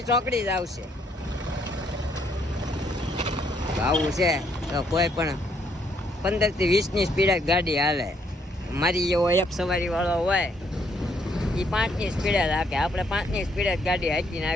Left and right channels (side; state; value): both; normal; correlation 0.70